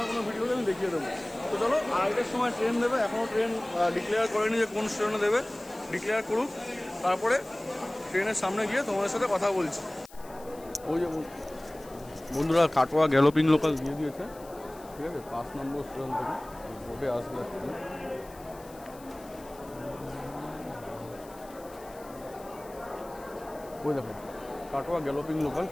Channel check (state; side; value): noise; left; hiss, 22 dB below the sound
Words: কোনো ভিডিওতে আমি দেখিয়ে দেবো। তো চলো, আরেকটার সময় ট্রেন দেবে, এখনও ট্রেন ডিক্লেয়ার করেনি যে কোন স্টেশনে দেবে। ডিক্লেয়ার করুক, তারপরে ট্রেনের সামনে গিয়ে তোমাদের সাথে কথা বলছি। ওই যে বন্ধুরা, কাটোয়া গ্যালোপিং লোকাল দিয়ে দিয়েছে, ঠিক আছে। 5 নম্বর স্টেশন থেকে বোটে আসবে। ওই দেখো, কাটোয়া গ্যালোপিং লোকাল